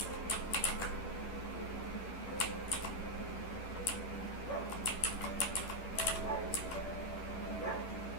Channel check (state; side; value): late; right; 11 ms